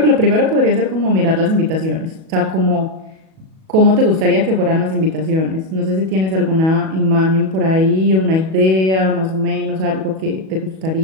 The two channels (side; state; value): left; late; 37 ms